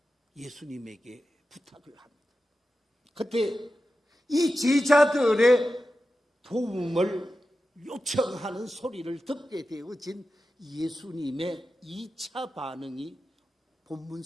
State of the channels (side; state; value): both; normal; correlation 0.92